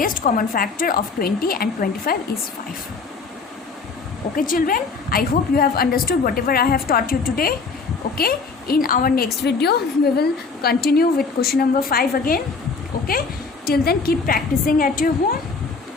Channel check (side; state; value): right; quieter; 4.6 dB